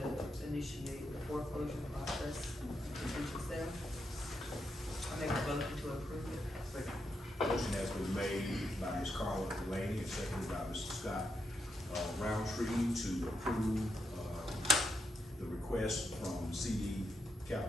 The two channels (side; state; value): both; normal; correlation 0.82